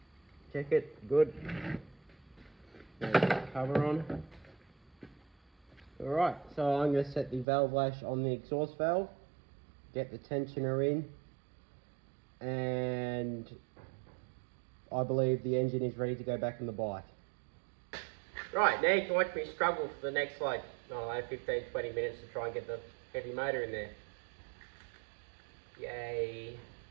Check it, good. Now put the cover on. Alright, so I'm going to set the valve lash on the exhaust valve, get the tensioner in, and I believe the engine is ready to go back in the bike. Right, now you can watch me struggle for the next, like, I don't know, 15-20 minutes to try and get the heavy motor in there. Yay.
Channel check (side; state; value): left; drops out; at 7.5 s